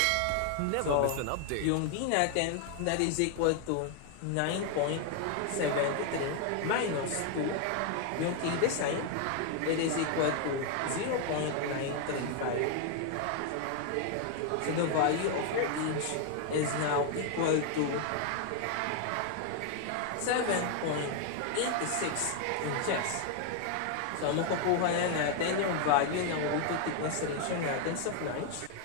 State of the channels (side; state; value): both; different; correlation 0.00